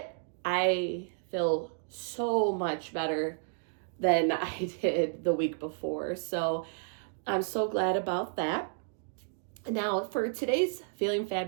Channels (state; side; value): silent; left; digital silence